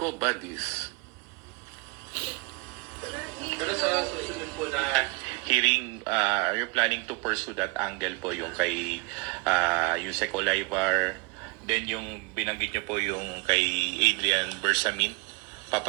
Pero sa susunod po na hearing, you're planning to pursue that angle po yung kay Yusek Olaybar, then yung binanggit nyo po yung kay Adrian Bersamin.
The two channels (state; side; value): quieter; left; 26.6 dB